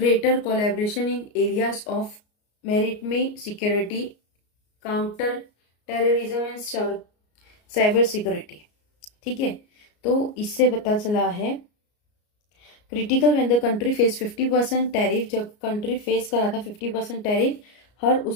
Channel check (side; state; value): right; late; 33 ms